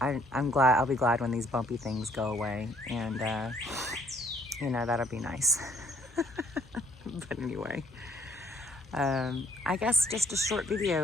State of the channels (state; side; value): normal; both; correlation 0.64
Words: I'm glad. I'll be glad when these bumpy things go away, and you know, that'll be nice. But anyway, I guess just a short